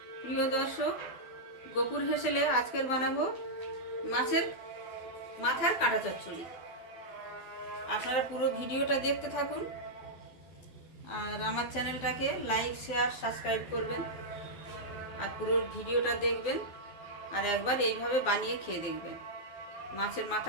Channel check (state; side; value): late; right; 12 ms